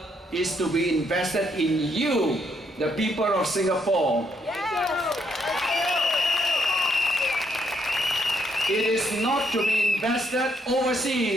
is to be invested in you, the people of Singapore. Yes. It is not to be invested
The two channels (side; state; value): both; normal; correlation 0.73